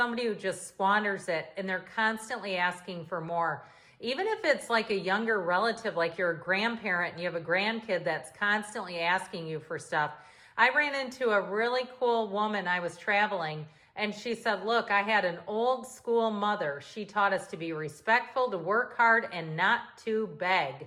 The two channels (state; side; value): identical; both; correlation 1.00